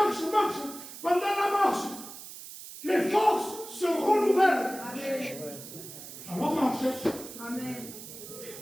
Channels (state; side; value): noise; right; hiss, 13 dB below the sound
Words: Pendant la marche, les forces se renouvellent. Amen. Alors marche. Amen.